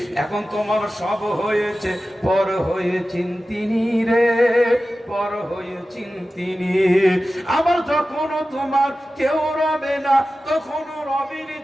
এখন তোমার সব হয়েছে, পর হয়েছেন তিনি রে, পর হয়েছেন তিনি। আবার যখন তোমার কেউ রবে না, তখন রবির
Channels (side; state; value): both; normal; correlation 0.94